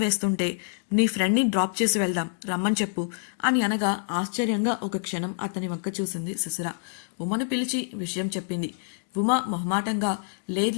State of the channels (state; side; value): silent; right; 60 dB below the other